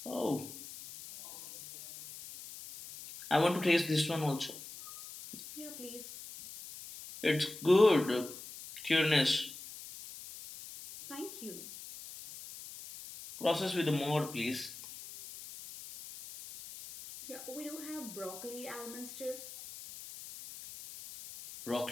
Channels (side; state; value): left; noise; hiss, 13 dB below the sound